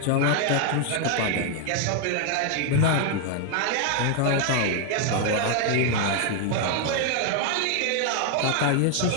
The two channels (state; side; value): different; both; correlation 0.01